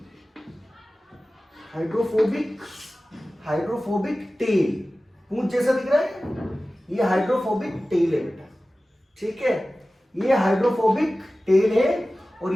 टेल, पूंछ जैसा दिख रहा है, ये हाइड्रोफोबिक टेल है बेटा, ठीक है। ये हाइड्रोफोबिक टेल है, और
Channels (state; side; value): normal; both; correlation 0.96